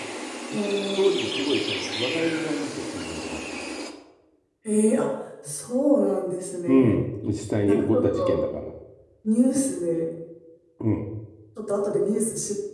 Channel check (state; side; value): identical; both; correlation 1.00